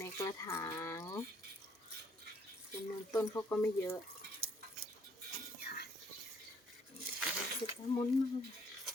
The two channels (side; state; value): both; normal; correlation 0.65